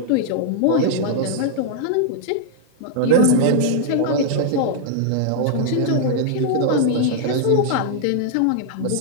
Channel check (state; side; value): different; both; correlation -0.01